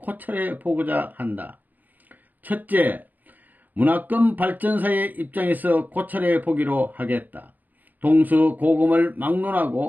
보고자 한다. 첫째, 문화권 발전사의 입장에서 고찰해 보기로 하겠다. 동서고금을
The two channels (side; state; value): left; late; 0.084 ms